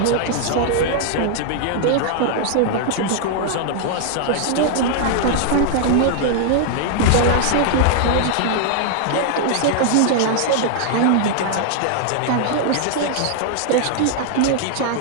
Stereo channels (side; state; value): both; different; correlation 0.00